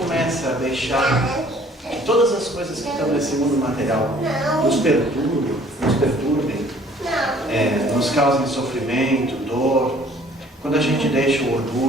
a deixar que todas as coisas que estão nesse mundo material nos perturbem, nos causem sofrimento, dor, quando a gente deixa o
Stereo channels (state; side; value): normal; both; correlation 0.56